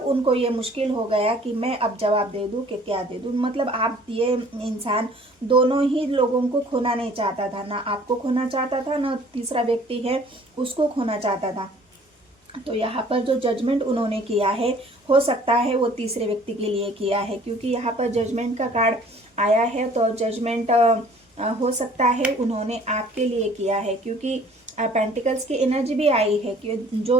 उनको ये मुश्किल हो गया कि मैं अब जवाब दे दूं कि क्या दे दूं। मतलब आप, ये इंसान दोनों ही लोगों को खोना नहीं चाहता था, ना आपको खोना चाहता था, ना तीसरा व्यक्ति है उसको खोना चाहता था। तो यहाँ पर जो जजमेंट उन्होंने किया है, हो सकता है वो तीसरे व्यक्ति के लिए किया है, क्योंकि यहाँ पर जजमेंट का कार्ड आया है। तो जजमेंट हो सकता है उन्होंने आपके लिए किया है, क्योंकि पेंटिकल्स की एनर्जी भी आई है कि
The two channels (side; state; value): both; normal; correlation 0.53